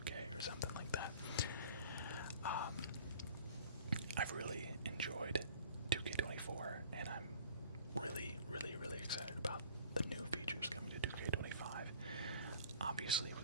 or something like that. I've really enjoyed 2K24, and I'm really, really, really excited about the new features coming to 2K25. Obviously,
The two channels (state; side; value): inverted; both; correlation -0.49